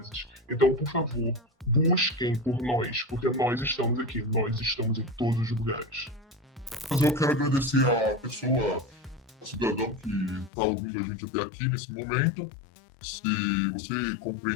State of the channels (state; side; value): drops out; right; at 10.5 s